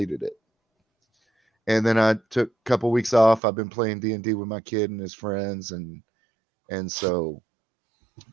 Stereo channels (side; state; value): left; drops out; at 3.4 s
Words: it. And then I took a couple weeks off. I've been playing D&D with my kid and his friends, and so